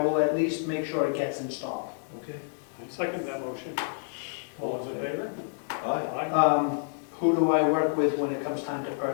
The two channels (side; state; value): right; silent; digital silence